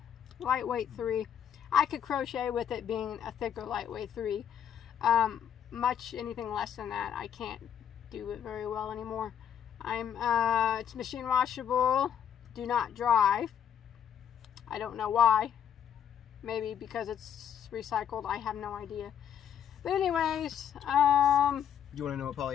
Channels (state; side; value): quieter; right; 9.0 dB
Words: lightweight 3. I could crochet with it being a thicker lightweight 3. Much anything less than that, I can't do it very well anymore. It's machine washable, do not dry. I don't know why. Maybe because it's recycled, I have no idea. But anyways, you want to know what